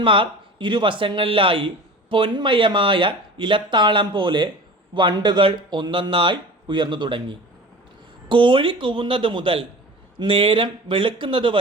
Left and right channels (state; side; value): normal; both; correlation 0.38